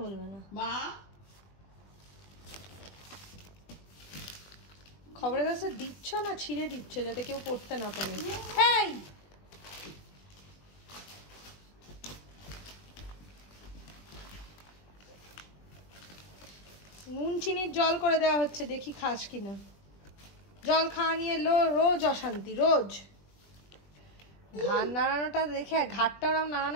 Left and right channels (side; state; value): right; late; 20 ms